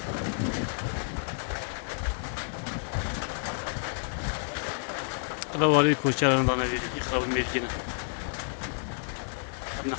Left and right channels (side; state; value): right; silent; digital silence